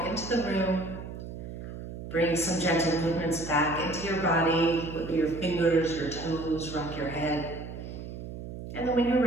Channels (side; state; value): right; noise; hum, 10 dB below the sound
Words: into the room. Bring some gentle movements back into your body. Wiggle your fingers, your toes, rock your head. And then when you're